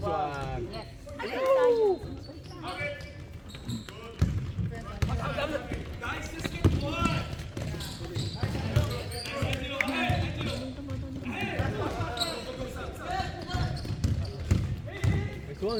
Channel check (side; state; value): both; identical; correlation 1.00